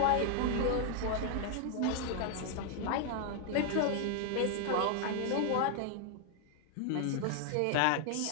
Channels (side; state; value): both; different; correlation 0.00